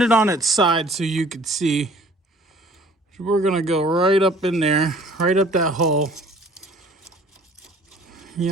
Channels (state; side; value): normal; both; correlation 0.52